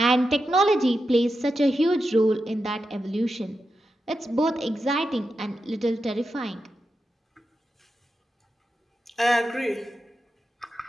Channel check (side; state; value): both; normal; correlation 0.88